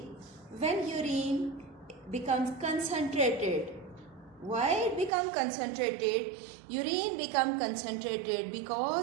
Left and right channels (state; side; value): drops out; left; at 5.1 s